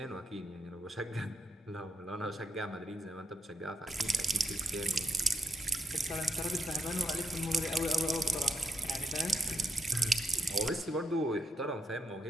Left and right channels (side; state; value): both; normal; correlation 0.81